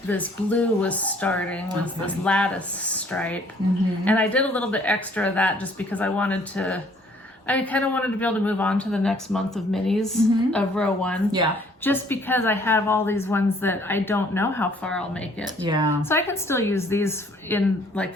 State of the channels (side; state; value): both; normal; correlation 0.60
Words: this blue was starting, was this Lattice Stripe. And I did a little bit extra of that just because I kind of wanted to be able to move on to the next month of minis of row 1. Yeah. Just because I have all these ones that I don't know how far I'll make it. Yeah. So I can still use these in, like,